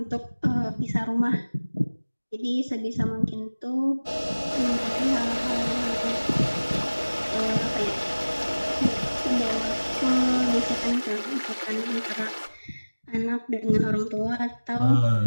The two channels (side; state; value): both; inverted; correlation -1.00